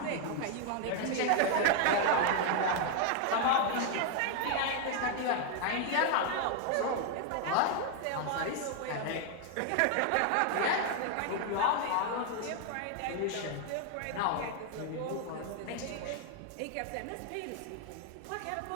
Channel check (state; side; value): different; both; correlation 0.00